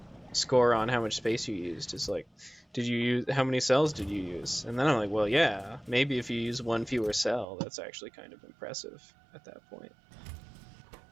score on how much space you used is like, how many cells did you use? And then I'm like, well, yeah, maybe if you use one fewer cell, that's actually kind of impressive at that point.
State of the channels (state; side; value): drops out; left; at 7.5 s